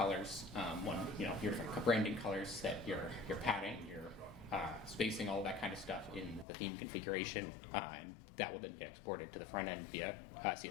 your different branding colors, set your padding, your spacing, all of that kind of stuff in the theme configuration, and that will then get exported to the front end via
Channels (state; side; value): drops out; right; at 6.5 s